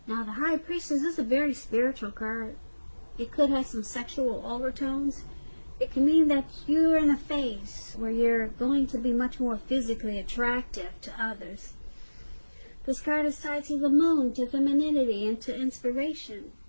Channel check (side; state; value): both; inverted; correlation -1.00